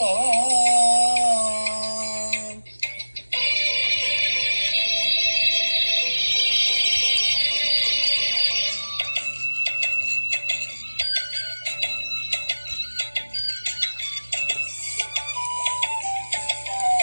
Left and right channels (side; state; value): both; inverted; correlation -1.00